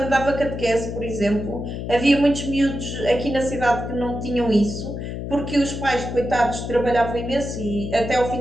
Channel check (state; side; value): noise; left; hum, 6 dB below the sound